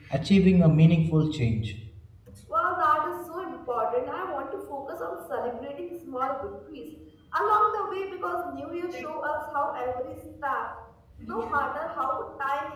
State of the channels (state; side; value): identical; both; correlation 1.00